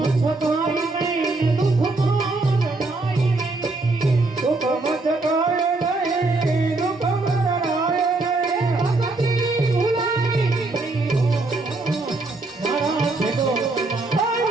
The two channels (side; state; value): left; quieter; 3.2 dB